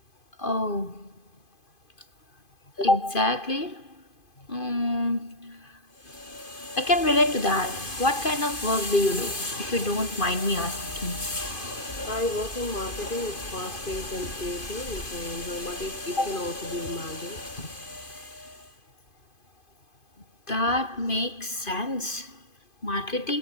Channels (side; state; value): right; late; 2.5 ms